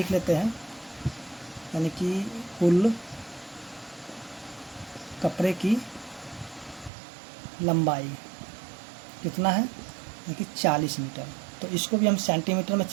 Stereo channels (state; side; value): drops out; left; at 6.9 s